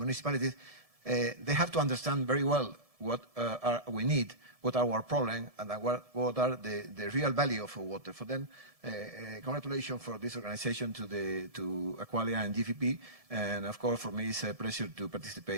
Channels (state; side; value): late; left; 1.7 ms